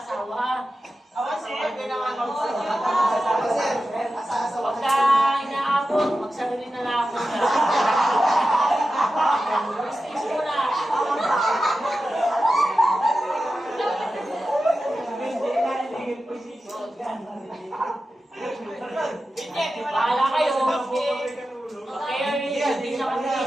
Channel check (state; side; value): normal; both; correlation 0.92